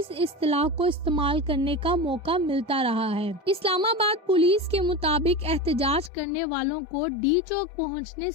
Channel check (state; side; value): drops out; right; at 6.1 s